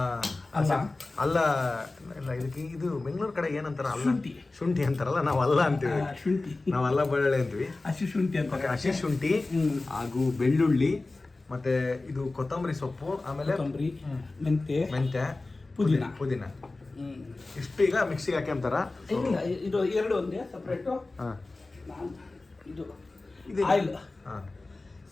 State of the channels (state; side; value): quieter; right; 3.2 dB